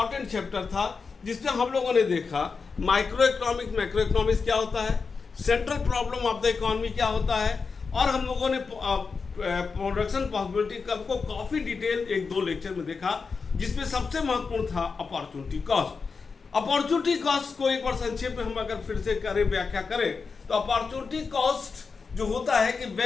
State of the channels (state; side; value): quieter; right; 4.9 dB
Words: चैप्टर था, जिसमें हम लोगों ने देखा माइक्रो इकोनॉमिक्स, मैक्रो इकोनॉमिक्स क्या होता है, central problem of the economy क्या होता है, और हम लोगों ने प्रोडक्शन पॉसिबिलिटी कर्व को काफी डिटेल 1-2 लेक्चर में देखा, जिसमें सबसे महत्वपूर्ण था अपॉर्चुनिटी कॉस्ट। अपॉर्चुनिटी कॉस्ट को एक बार संक्षेप में हम अगर फिर से करें, व्याख्या करें, तो अपॉर्चुनिटी कॉस्ट जो होता है कि